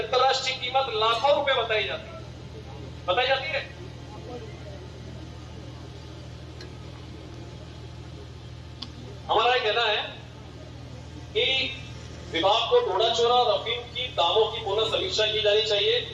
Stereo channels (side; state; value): both; identical; correlation 1.00